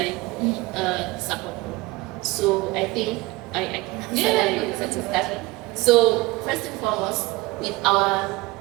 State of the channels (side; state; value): left; quieter; 21.5 dB